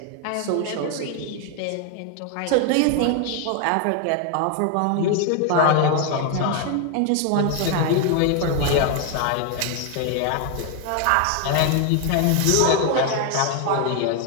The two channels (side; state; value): both; different; correlation 0.01